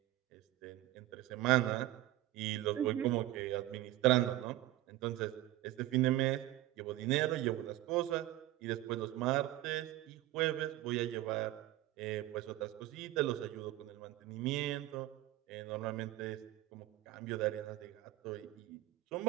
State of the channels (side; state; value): left; quieter; 15.9 dB